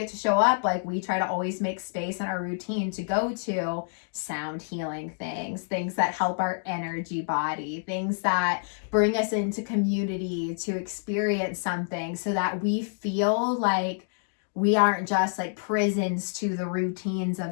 to show up, like we try to always make space in our routine to go to sound healing things that help our energy body, things that bring us into community to experience something, so that we feel like we aren't just like prisons to the routines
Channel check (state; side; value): silent; right; digital silence